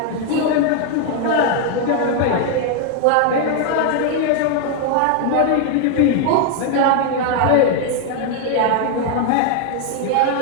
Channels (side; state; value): both; different; correlation 0.01